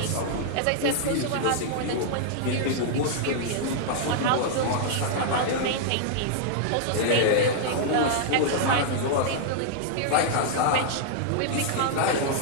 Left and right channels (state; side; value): different; both; correlation -0.01